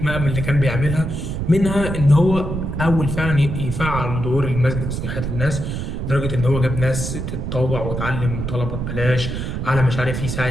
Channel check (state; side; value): noise; right; rumble, 4 dB below the sound